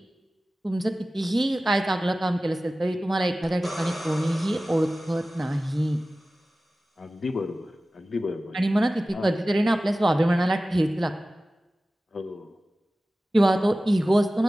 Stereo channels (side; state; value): both; normal; correlation 0.96